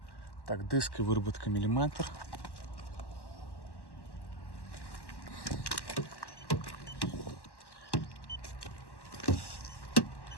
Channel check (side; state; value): right; late; 1.1 ms